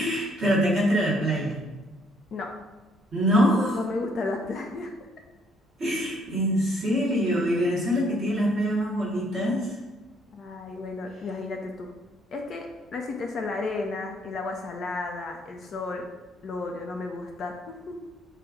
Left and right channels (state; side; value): normal; both; correlation 0.67